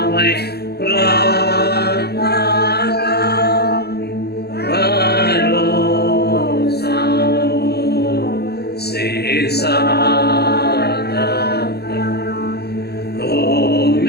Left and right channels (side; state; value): right; late; 0.47 ms